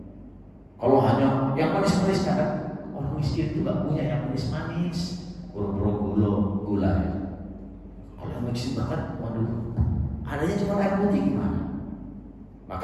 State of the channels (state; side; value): identical; both; correlation 1.00